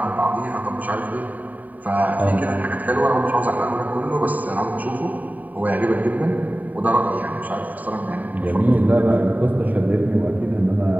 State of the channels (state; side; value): late; left; 0.077 ms